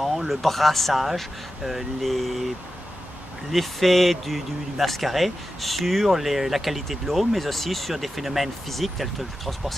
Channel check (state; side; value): normal; both; correlation 0.92